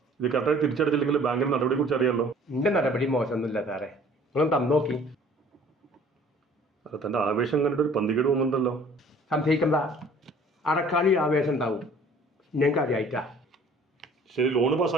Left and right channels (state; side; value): normal; both; correlation 0.52